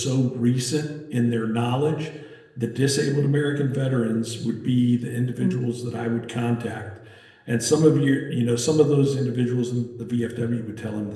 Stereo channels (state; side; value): identical; both; correlation 1.00